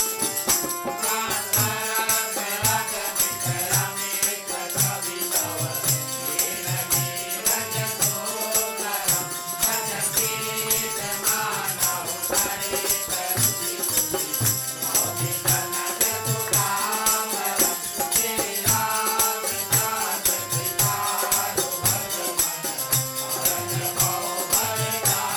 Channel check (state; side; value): identical; both; correlation 1.00